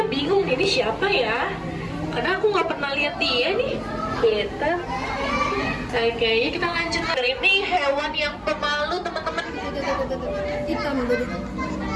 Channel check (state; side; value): identical; both; correlation 1.00